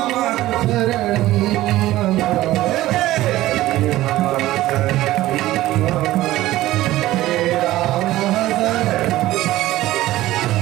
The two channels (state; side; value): quieter; left; 16.0 dB